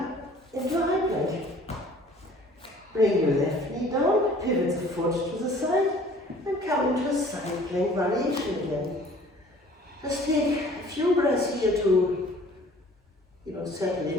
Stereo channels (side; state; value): both; normal; correlation 0.52